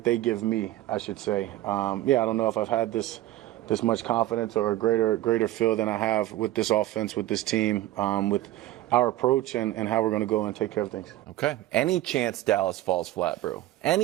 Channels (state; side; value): quieter; left; 15.2 dB